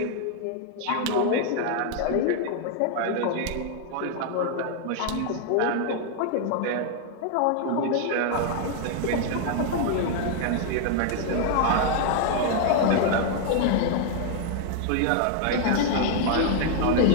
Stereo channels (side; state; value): both; different; correlation 0.00